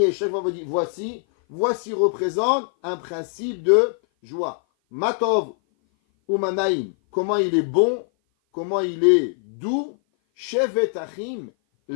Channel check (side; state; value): right; silent; 57 dB below the other